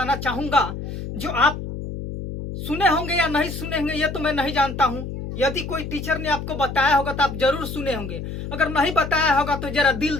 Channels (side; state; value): left; noise; hum, 7 dB below the sound